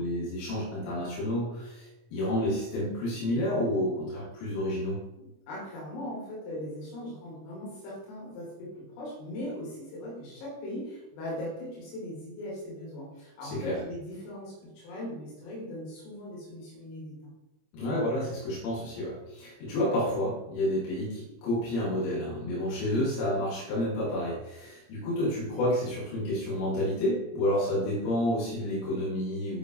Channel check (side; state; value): right; late; 26 ms